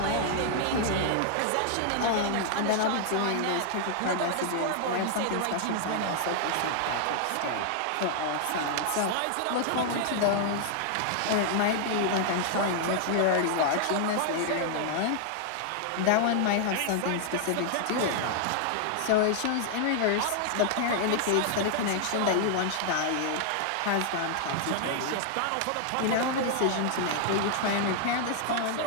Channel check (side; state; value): both; different; correlation 0.00